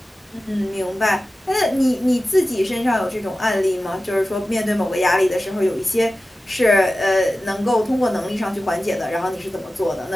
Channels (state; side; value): normal; both; correlation 0.95